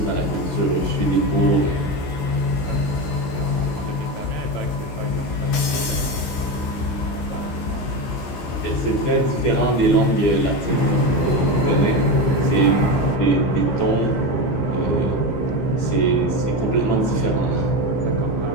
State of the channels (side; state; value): right; late; 16 ms